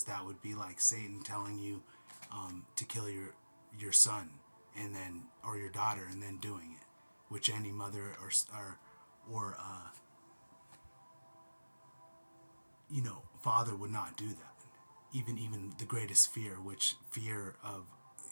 that would be like Satan telling you to kill your son, and then, or your daughter, and then doing it, which any mother or father would not do that. Even the greatest fear, which fear of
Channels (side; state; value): both; inverted; correlation -1.00